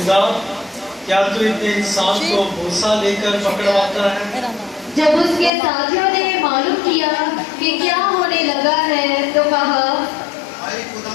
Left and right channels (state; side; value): drops out; right; at 5.5 s